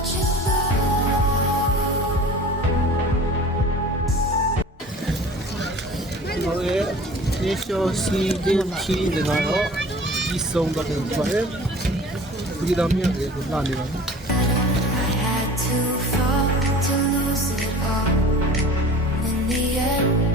it go. ဟိုရဲ့နေရှိုးစီတင်ချီတွေကတော့ဒီဆုံးတော့တယ်ပါတယ်ဒီတော့မြင်တယ်ကိုလာနေပါ I had to fall to lose it all. In the end,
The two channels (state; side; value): normal; both; correlation 0.42